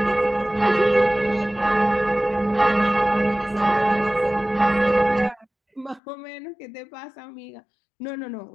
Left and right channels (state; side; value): drops out; right; at 6.0 s